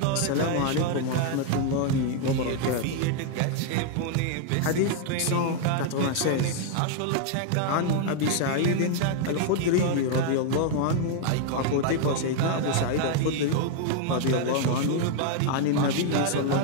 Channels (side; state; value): both; different; correlation 0.00